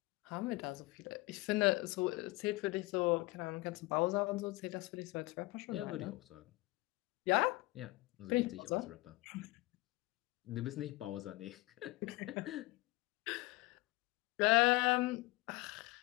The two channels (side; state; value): right; quieter; 21.8 dB